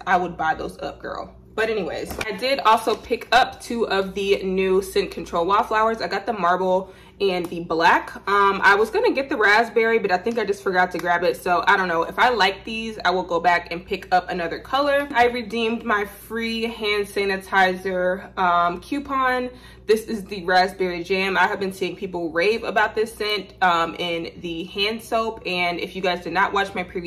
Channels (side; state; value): both; identical; correlation 1.00